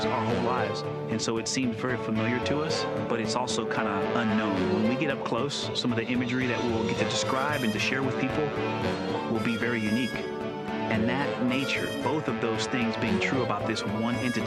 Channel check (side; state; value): both; identical; correlation 1.00